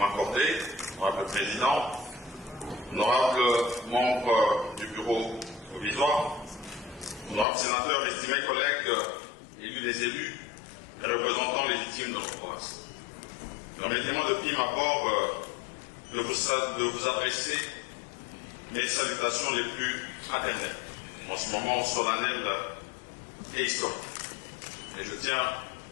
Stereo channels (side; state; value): right; drops out; at 7.5 s